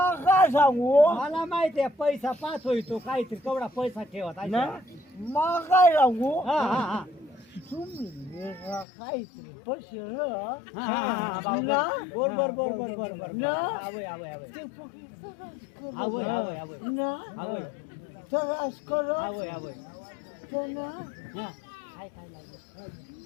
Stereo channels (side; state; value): right; drops out; at 8.8 s